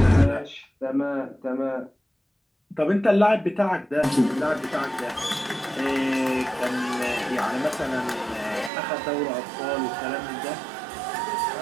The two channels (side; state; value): left; drops out; at 8.7 s